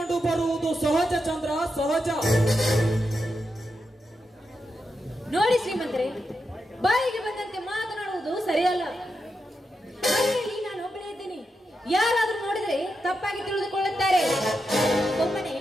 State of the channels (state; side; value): normal; both; correlation 0.87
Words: ಬರುವುದು ಸಹಜ ಚಂದ್ರ, ಸಹಜ. ನೋಡಿ ಶ್ರೀಮಂತರೇ, ಬಾಯಿಗೆ ಬಂದಂತೆ ಮಾತನಾಡುವುದು ಸರಿಯಲ್ಲ. ಮನೆಯಲ್ಲಿ ನಾನು ಒಬ್ಬನೇ ಇದ್ದೀನಿ. ಯಾರಾದ್ರೂ ನೋಡಿದ್ರೆ ತಪ್ಪಾಗಿ ತಿಳಿದುಕೊಳ್ಳುತ್ತಾರೆ. ಒಮ್ಮನೆ